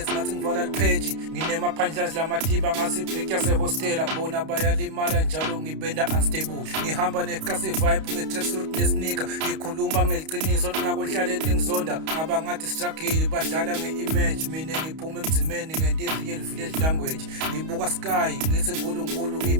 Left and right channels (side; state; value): left; late; 31 ms